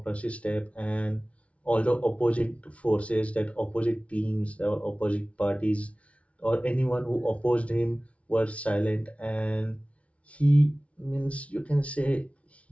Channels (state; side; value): late; right; 0.063 ms